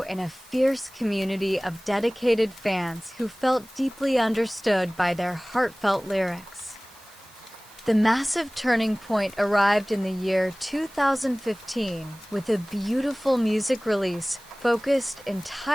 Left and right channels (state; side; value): noise; right; hiss, 27 dB below the sound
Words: in a fierce community of dedicated fans who felt deeply understood by their heartfelt lyrics. The massive turning point arrived in the year 2015 with a beautiful music release focused